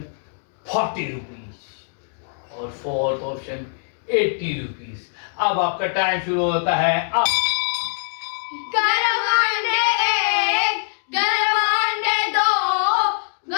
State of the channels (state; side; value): silent; right; digital silence